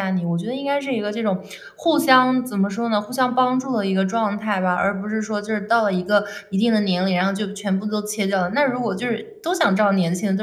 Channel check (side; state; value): both; identical; correlation 1.00